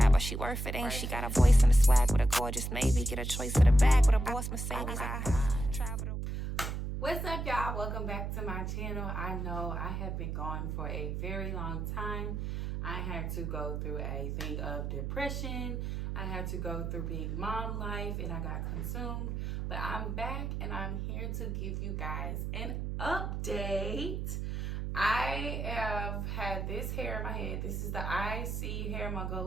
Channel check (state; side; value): noise; right; hum, 3 dB below the sound